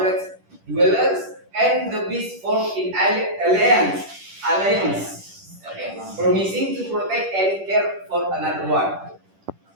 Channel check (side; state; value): left; late; 10 ms